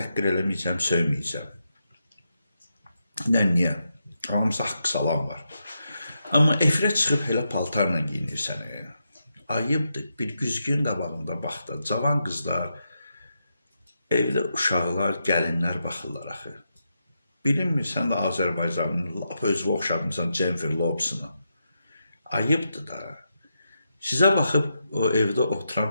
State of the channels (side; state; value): both; inverted; correlation -0.84